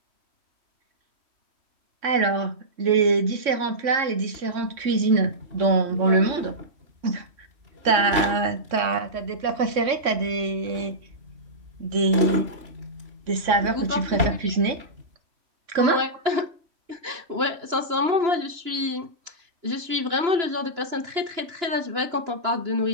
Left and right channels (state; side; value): late; left; 3.6 ms